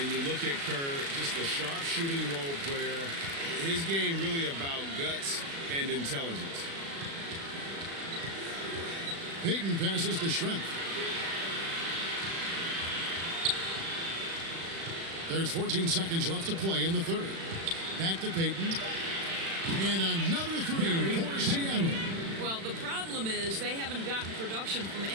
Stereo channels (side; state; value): left; late; 36 ms